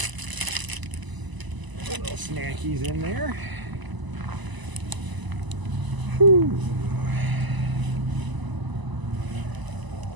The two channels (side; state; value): left; late; 1.0 ms